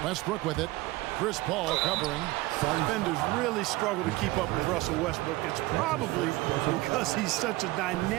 Westbrook with it. Chris Paul covering. Defenders really struggle to keep up with Russell Westbrook. It's probably because he's such a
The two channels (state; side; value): quieter; left; 19.6 dB